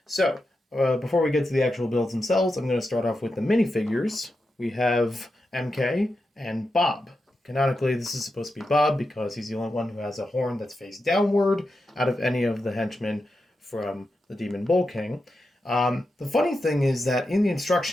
So, before we get to the actual builds themselves, I'm going to start off with the minifigures. We have MK and Bob. Canonically, this is supposed to be Bob because he's the only one who has a horn that's face downward out of any of the henchmen from the Demon Bull King. The funny thing is that in the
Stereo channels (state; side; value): normal; both; correlation 0.88